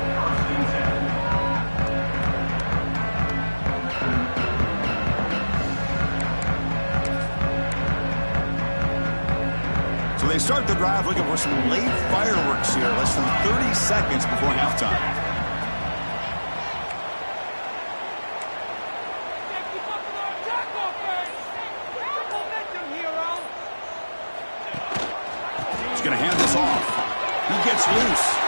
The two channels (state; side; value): inverted; both; correlation -1.00